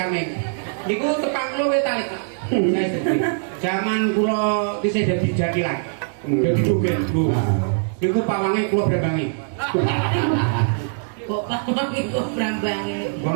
Niku tepang kula wis talik. Saya sedih. Zaman kula isih dadi jadilan. Dadi joget, Bu. Niku pawange kula brambangi. Kok pamang iku brambange.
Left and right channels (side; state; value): left; silent; digital silence